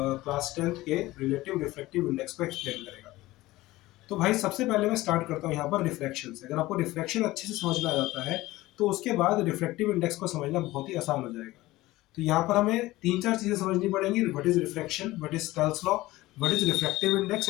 टेंथ के रिलेटिव रिफ्रैक्टिव इंडेक्स को एक्सप्लेन करेगा। तो भाई सबसे पहले मैं स्टार्ट करता हूँ यहाँ पर रिफ्रैक्शन से। अगर आपको रिफ्रैक्शन अच्छे से समझ में आ जाता है तो उसके बाद रिफ्रैक्टिव इंडेक्स को समझना बहुत ही आसान हो जाएगा। तो यहाँ पर हमें तीन चार चीजें समझनी पड़ेंगी। What is refraction, what is Snell's law, what is refractive index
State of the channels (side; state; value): right; quieter; 18.1 dB